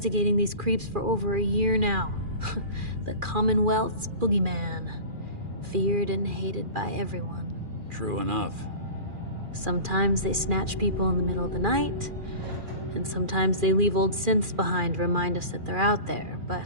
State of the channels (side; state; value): left; late; 2.4 ms